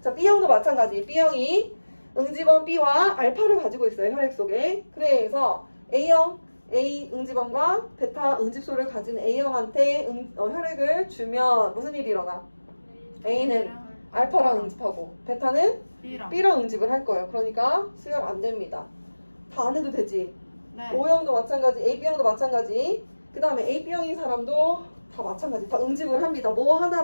자, B형도 마찬가지. B형이 응집원 B와 알파를 가지고 있어요. 혈액 속에. 그래서 A형, A 응집원과 베타 응집소를 가진 A형한테 혈액을 주면 무슨 일이 일어나? A는 알파랑 응집하고 베타는 B랑 응집을 할 거예요. 그러니까 수혈 안 됩니다. 다 안 해도 되지. 네. O형도 마찬가지, AB형도 마찬가지. 그 다음에 AB형인 사람도 다 마찬가지. 다 응집을 합니다. 뭐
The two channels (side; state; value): both; inverted; correlation -1.00